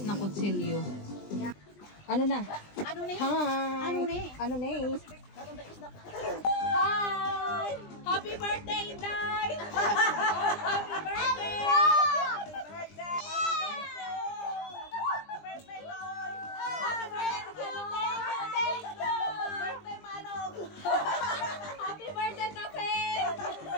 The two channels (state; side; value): late; right; 20 ms